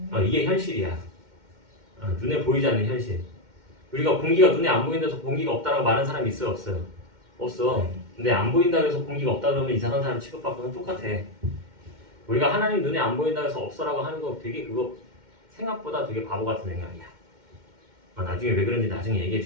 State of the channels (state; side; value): late; left; 2.1 ms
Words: 이게 현실이야. 눈에 보이지 않는 현실. 우리가 공기가 눈에 안 보인다서 공기가 없다라고 말하는 사람이 있어요? 없어요? 없어. 근데 안 보인다고 해서 공기가 없다 그러면 이상한 사람 취급받고는 똑같아. 우리가 하나님 눈에 안 보인다고 해서 없어라고 하는 거 되게 그거 생각보다 되게 바보 같은 생각이야. 나중에 왜 그런지 나중에 얘기해